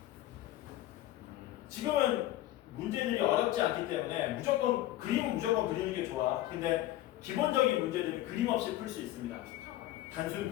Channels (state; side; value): quieter; right; 15.0 dB